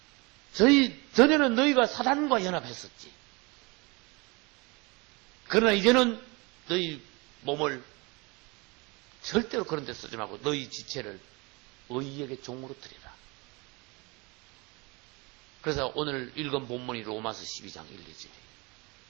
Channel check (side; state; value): left; quieter; 27.0 dB